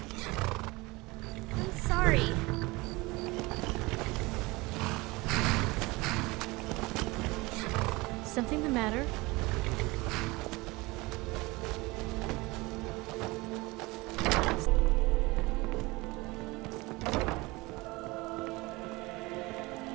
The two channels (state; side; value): quieter; left; 23.0 dB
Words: I'm sorry. Something the matter?